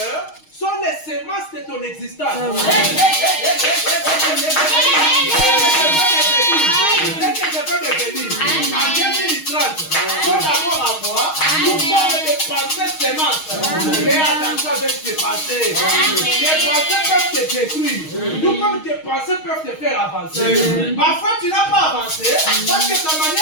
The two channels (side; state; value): right; late; 6.4 ms